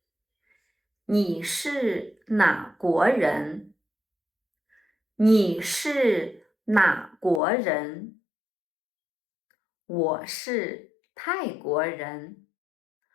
你是哪国人？你是哪国人？我是泰国人。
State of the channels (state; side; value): drops out; right; at 7.4 s